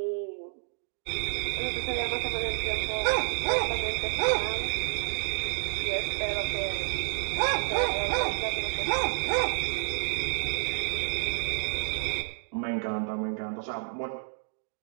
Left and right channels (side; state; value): left; silent; 58 dB below the other